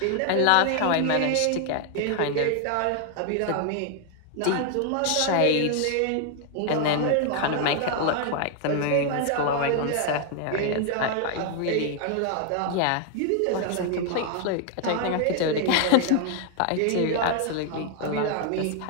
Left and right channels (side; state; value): both; different; correlation 0.00